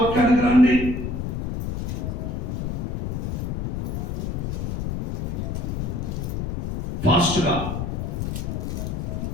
రండి. ఫాస్ట్ గా.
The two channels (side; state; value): left; noise; rumble, 2 dB below the sound